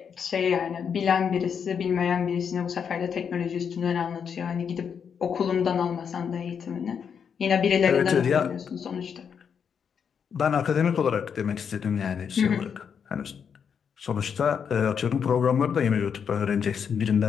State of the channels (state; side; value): quieter; right; 7.1 dB